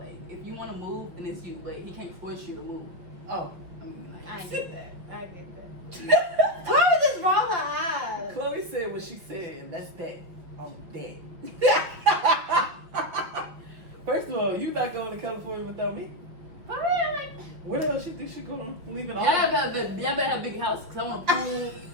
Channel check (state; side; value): late; left; 5.7 ms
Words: if you want to move, then it's you. But he can't force you to move. Oh, I mean, like, I get that. I get that. Chloe just rolled her eyes. Chloe said what she said, and that's that. On that. First of all, you not going to California without me. For real, like, Where the hell she think she going? Leaving all? y'all better have a big house because I want a pool,